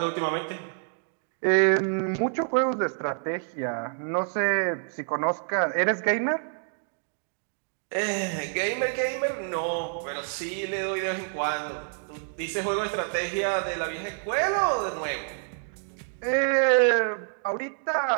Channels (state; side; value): silent; left; 60 dB below the other